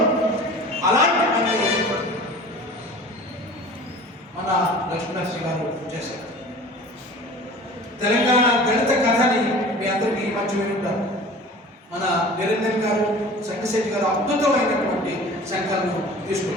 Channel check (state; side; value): normal; both; correlation 0.42